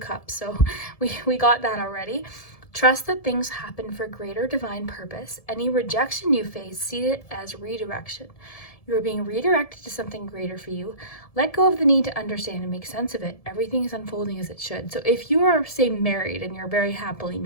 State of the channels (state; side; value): late; right; 1.7 ms